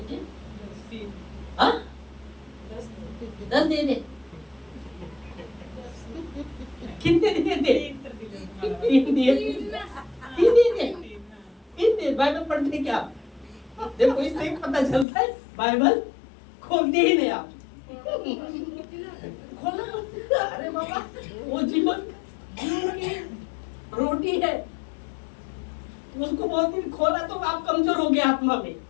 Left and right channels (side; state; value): right; drops out; at 15.1 s